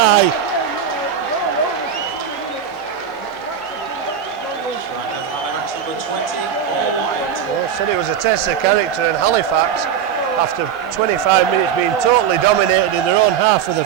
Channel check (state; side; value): quieter; left; 8.4 dB